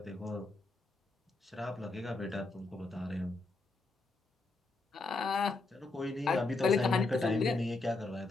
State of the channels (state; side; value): quieter; right; 3.4 dB